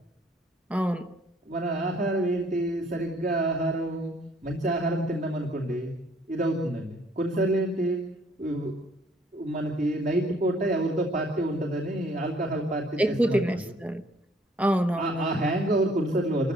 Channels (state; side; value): normal; both; correlation 0.61